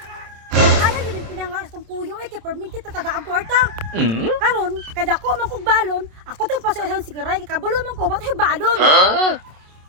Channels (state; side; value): late; left; 27 ms